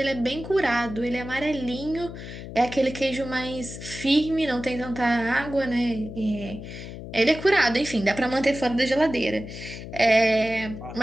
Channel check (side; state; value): left; noise; hum, 11 dB below the sound